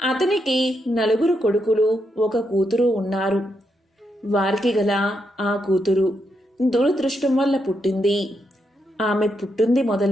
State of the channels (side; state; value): both; normal; correlation 0.81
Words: 4 కొడుకులు, 1 కూతురు ఉన్నారు. వారికి గల ఆ కూతురు దురదృష్టం వల్ల పుట్టింది. ఆమె పుట్టింది